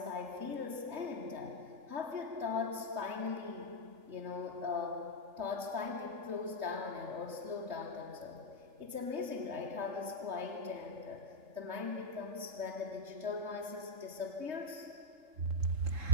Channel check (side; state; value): left; late; 3.2 ms